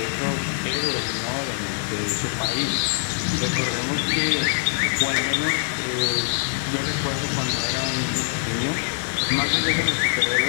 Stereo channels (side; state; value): right; silent; 63 dB below the other